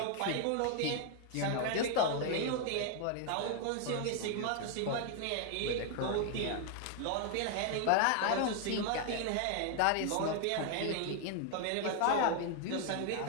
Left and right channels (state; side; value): different; both; correlation 0.00